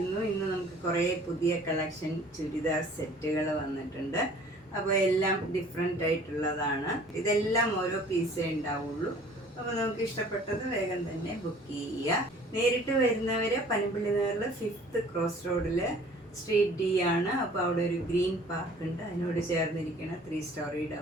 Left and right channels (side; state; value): both; normal; correlation 0.51